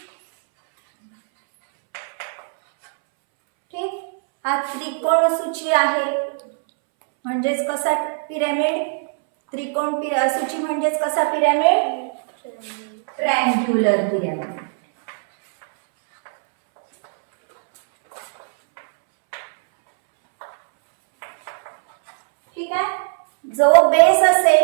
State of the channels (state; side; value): silent; left; 66 dB below the other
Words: ठीक. हा त्रिकोण सूची आहे. म्हणजेच कसा पिरॅमिड? त्रिकोण सूची म्हणजेच कसा पिरॅमिड? Triangular pyramid. ठीक आहे? जो बेस